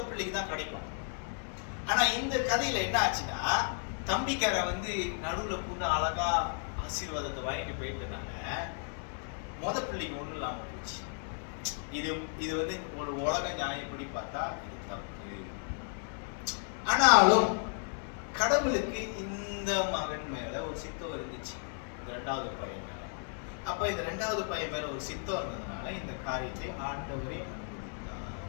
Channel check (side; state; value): right; silent; 55 dB below the other